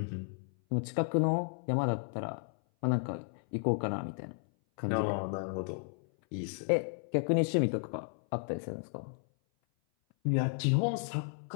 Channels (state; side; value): silent; right; 56 dB below the other